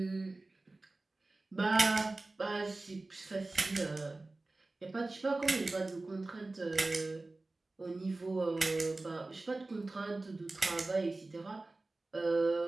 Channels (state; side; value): quieter; left; 3.1 dB